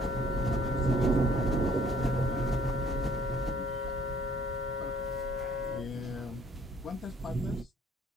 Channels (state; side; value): normal; both; correlation 0.60